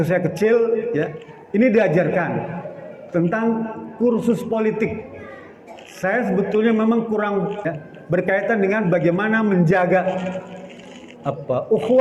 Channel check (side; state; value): both; identical; correlation 1.00